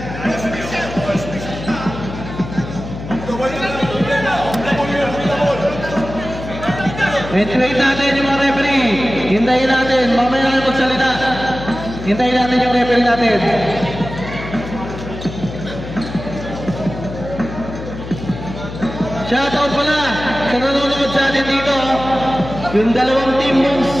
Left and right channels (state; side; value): noise; left; hum, 10 dB below the sound